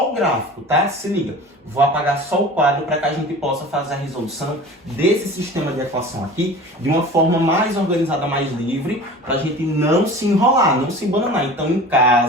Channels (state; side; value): normal; both; correlation 0.39